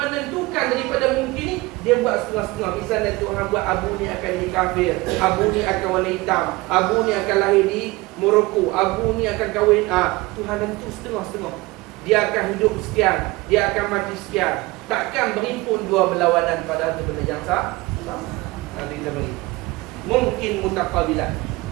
daripada mungkin ni, dia buat setengah-setengah. Misalnya Tuhan buat Abu ni akan jadi kafir, Abu ni akan warna hitam, Abu ni akan lahir di Morocco, Abu ni akan kahwin. Tuhan tentu setengah-setengah. Dia akan hidup sekian, dia akan mati sekian. Takkan berimpun dua berlawanan pada satu benda yang sama. Nanti kita bagi mungkin mutaqabilah.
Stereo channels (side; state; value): left; quieter; 21.9 dB